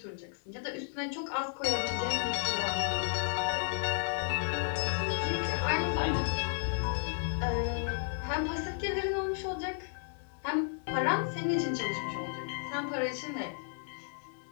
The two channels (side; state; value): right; silent; digital silence